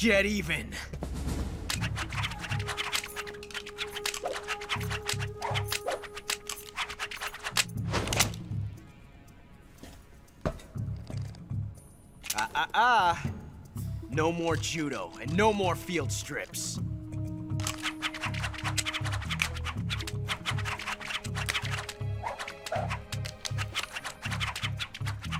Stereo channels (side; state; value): both; identical; correlation 1.00